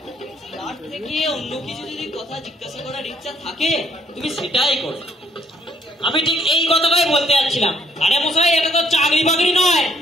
তার থেকে অন্য কিছু যদি কথা জিজ্ঞাসা করার ইচ্ছা থাকে তুমি সেটাই করো। আমি ঠিক এই কথাটাই বলতে যাচ্ছিলাম। আরে মশাই, এটা তো চাকরি বাকরি নয়,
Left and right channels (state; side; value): normal; both; correlation 0.66